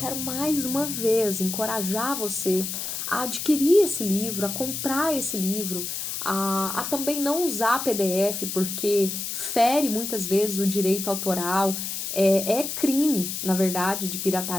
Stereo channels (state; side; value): noise; left; hiss, 4 dB below the sound